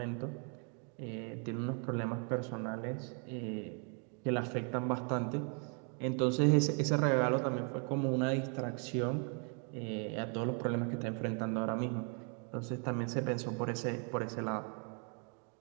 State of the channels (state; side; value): quieter; left; 39.9 dB